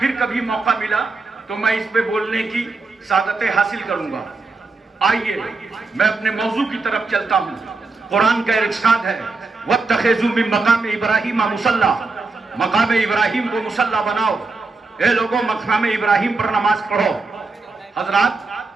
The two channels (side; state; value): left; quieter; 3.8 dB